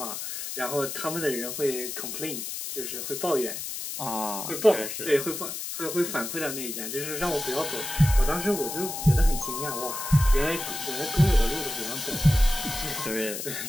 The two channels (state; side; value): noise; left; hiss, 6 dB below the sound